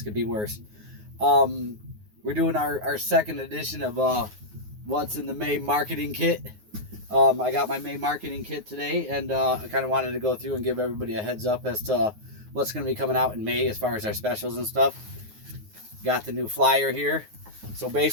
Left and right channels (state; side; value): late; left; 9.5 ms